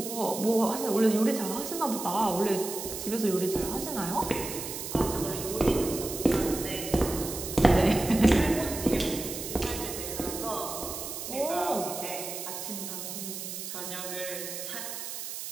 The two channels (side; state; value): right; noise; hiss, 7 dB below the sound